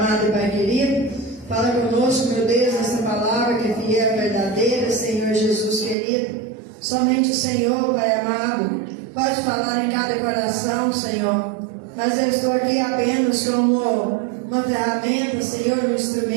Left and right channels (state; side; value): drops out; left; at 6.0 s